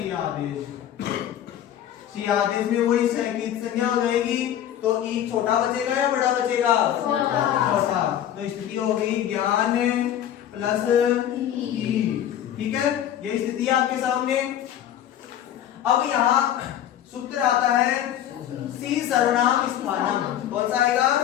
सी आदेश में वही सैकित संज्ञा हो जाएगी, तो ई छोटा बचेगा या बड़ा बचेगा, छोटा। तो स्थिति हो गई ज्ञान प्लस ई, ठीक है, ये स्थिति है आपके सामने। अब यहाँ सूत्र आता है सी सर्वनाम स्थानम, कौन सा आएगा,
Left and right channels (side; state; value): right; quieter; 10.9 dB